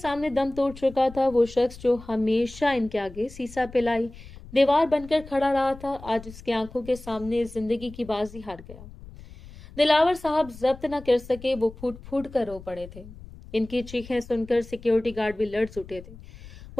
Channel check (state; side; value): noise; left; rumble, 17 dB below the sound